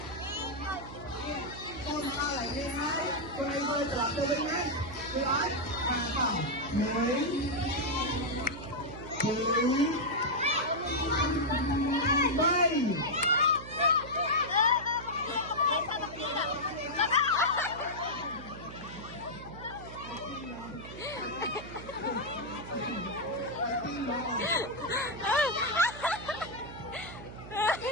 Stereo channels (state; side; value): noise; right; hum, 13 dB below the sound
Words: Con đau lại đi đấy. Con này bơi trở lại từ bên đấy. Đi đấy. Hàng phòng. Đấy. Bay.